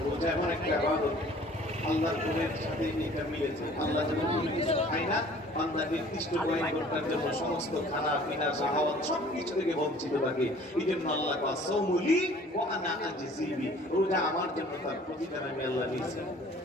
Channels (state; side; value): normal; both; correlation 0.51